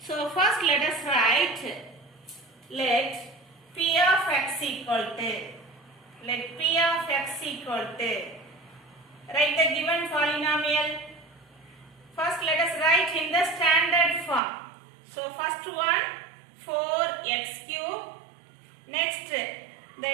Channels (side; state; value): left; drops out; at 14.4 s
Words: first let us write, let p of x equal to, write the given polynomial. First let us write in the standard form. So first one 4x cube. Next the